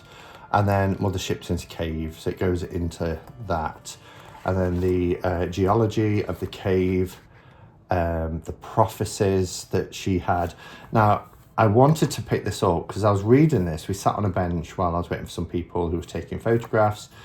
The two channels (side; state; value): both; identical; correlation 1.00